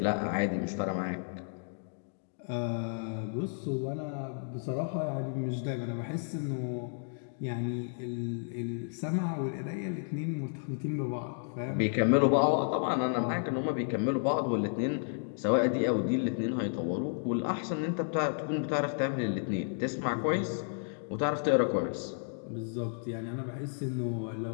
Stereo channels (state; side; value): silent; right; digital silence